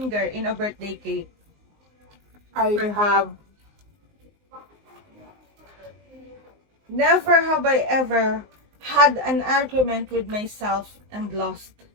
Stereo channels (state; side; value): late; left; 19 ms